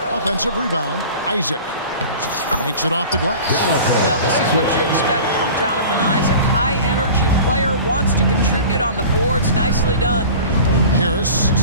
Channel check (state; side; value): inverted; both; correlation -0.39